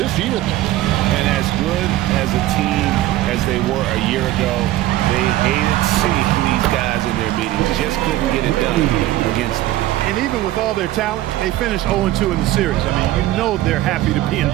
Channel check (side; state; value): left; quieter; 15.3 dB